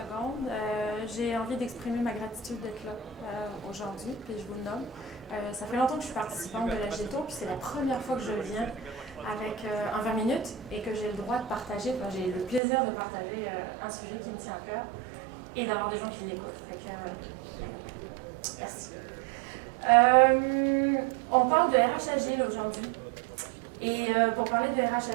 J'ai envie d'exprimer ma gratitude d'être là aujourd'hui, puis je vous le nomme. Ça fait longtemps que je suis participante de la GETO, puis c'est la première fois que je viens avec un 20 minutes et que j'ai le droit de partager, enfin, j'ai le plaisir de partager un sujet qui me tient à cœur et d'avoir des gens qui l'écoutent. Fait que, merci. On parle de RH Agile aujourd'hui. Et pour parler de RH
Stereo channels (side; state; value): left; drops out; at 12.6 s